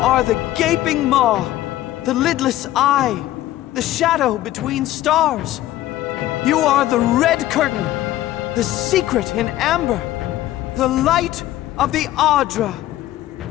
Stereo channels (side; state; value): right; quieter; 14.6 dB